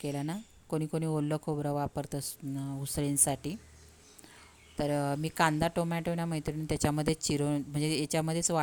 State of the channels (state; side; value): identical; both; correlation 1.00